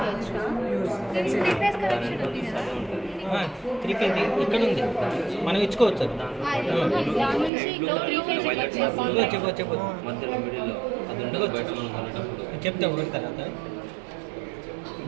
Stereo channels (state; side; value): drops out; left; at 7.5 s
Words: 3 ఫేస్ కనెక్షన్ ఉంది కదా, 3 ఫేజ్ ఇక్కడ ఉంది, మనం ఇచ్చుకోవచ్చు. అది దాని నుంచి ఇక్కడ 3 ఫేస్ చెప్పు మధ్యలో మిడిల్లో అది ఉండదు బయట మనం కొనేటప్పుడు. చెప్తే ఒకటి తర్వాత